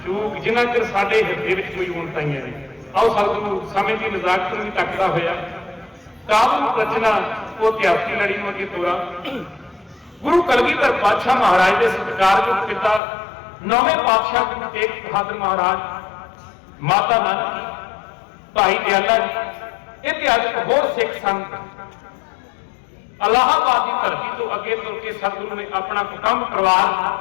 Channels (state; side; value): drops out; right; at 13.0 s